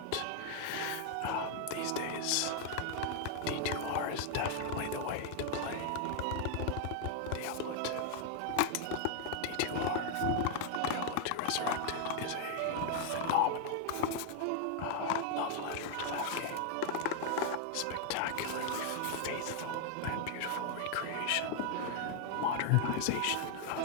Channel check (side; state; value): both; different; correlation 0.00